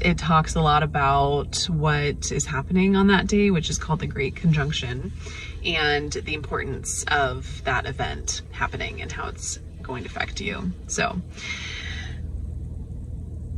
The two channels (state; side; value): identical; both; correlation 1.00